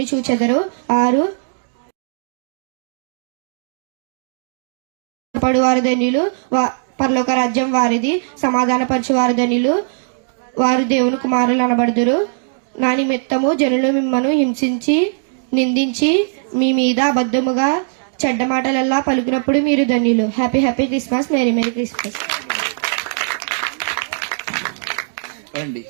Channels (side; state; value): left; silent; digital silence